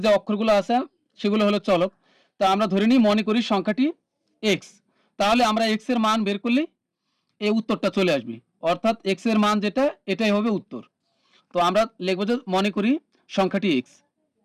যে অক্ষরগুলো আছে সেগুলো হলো চলক। তা আমরা ধরে নিই মনে করি সংখ্যাটি এক্স, তাহলে আমরা এক্স এর মান বের করলে এই উত্তরটা চলে আসবে, অর্থাৎ এক্স এর মান যেটা এটাই হবে উত্তর। তো আমরা লিখবো যে মনে করি সংখ্যাটি এক্স।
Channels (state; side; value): identical; both; correlation 1.00